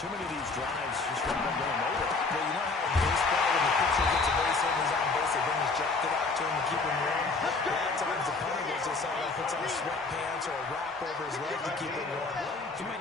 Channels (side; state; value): right; quieter; 3.9 dB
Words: many of these drives just haven't been going nowhere. Well, you know how in baseball, when the pitcher gets a base hit and he's on base, they bring his jacket out to him to keep him warm. A lot of times the punter goes to the sideline, puts on sweatpants or a wrap over his leg to keep him warm. He might